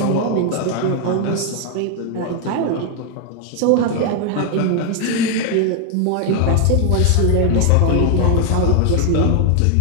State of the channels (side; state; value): both; different; correlation 0.00